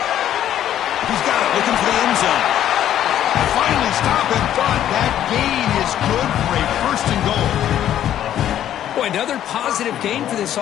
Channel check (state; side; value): quieter; right; 11.2 dB